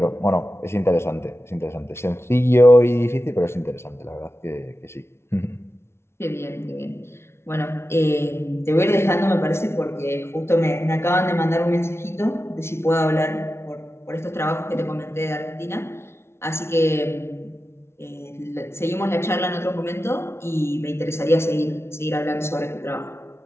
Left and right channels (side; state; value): right; late; 0.12 ms